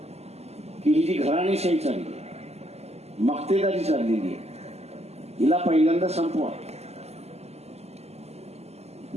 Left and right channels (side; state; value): left; late; 0.30 ms